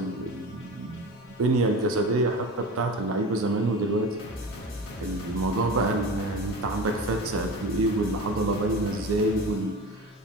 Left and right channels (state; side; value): normal; both; correlation 0.31